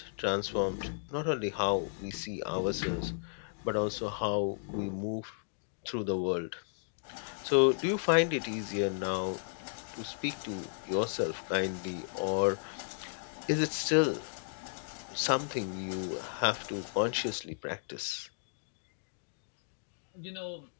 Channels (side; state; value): right; silent; digital silence